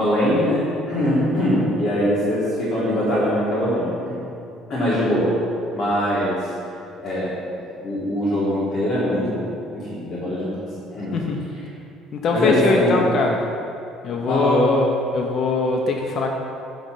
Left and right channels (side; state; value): both; normal; correlation 0.61